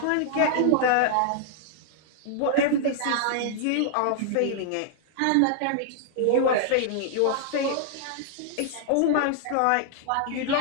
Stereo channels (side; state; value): both; different; correlation -0.01